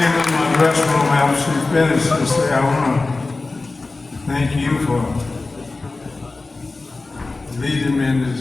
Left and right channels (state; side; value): quieter; right; 3.5 dB